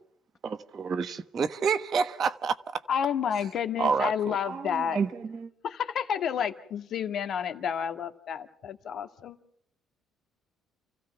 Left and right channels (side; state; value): both; normal; correlation 0.68